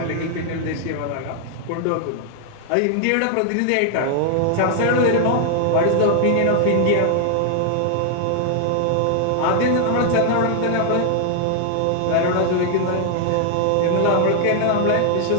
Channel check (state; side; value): different; both; correlation 0.00